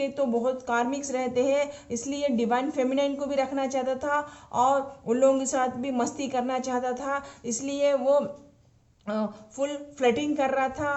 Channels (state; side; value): identical; both; correlation 1.00